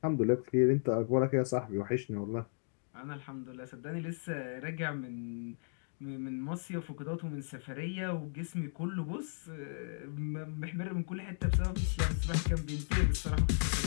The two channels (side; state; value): right; silent; digital silence